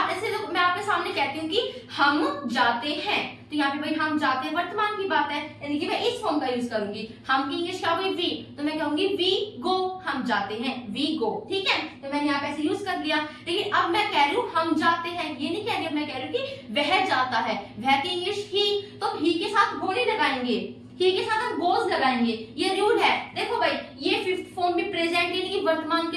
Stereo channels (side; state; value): both; identical; correlation 1.00